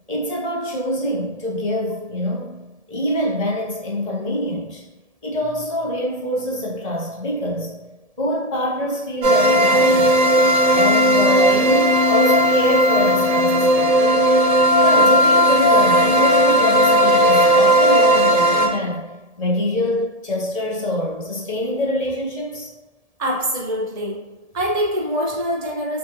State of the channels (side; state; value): left; late; 1.7 ms